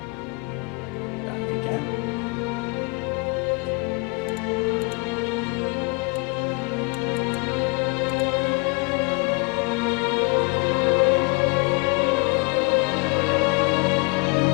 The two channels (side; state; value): right; quieter; 30.6 dB